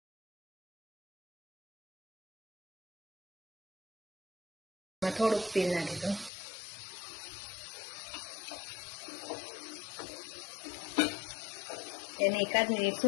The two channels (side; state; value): right; drops out; at 6.3 s